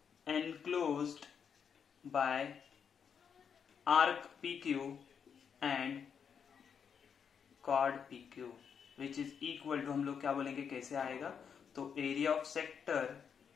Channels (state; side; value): quieter; right; 7.1 dB